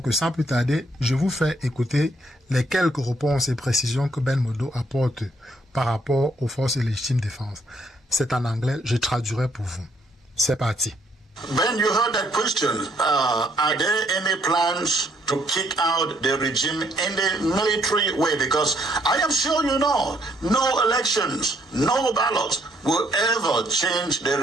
sans plus tarder, je vous fais écouter les quelques réponses et précisions que Ben Modo apporte par rapport aux forces de légitime défense. C'est en anglais, je traduirai pour vous. C'est parti. Ben, you heard that question. Are there any plans to kick out the regime in the military way? Because I am sure you know, no elections, no ballots will ever change the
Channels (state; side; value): normal; both; correlation 0.68